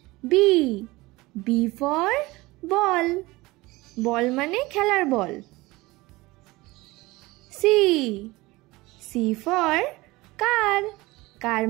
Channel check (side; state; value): left; quieter; 20.9 dB